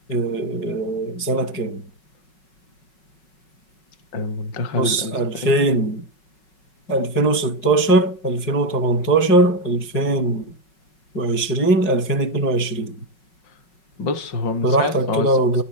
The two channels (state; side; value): late; right; 5.4 ms